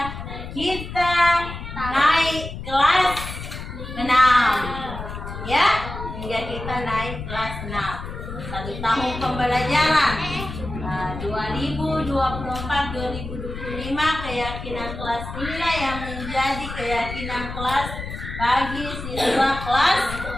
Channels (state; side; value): noise; left; rumble, 9 dB below the sound